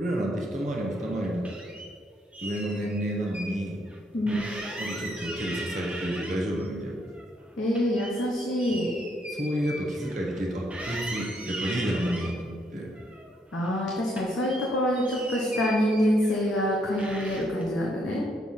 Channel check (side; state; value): both; normal; correlation 0.73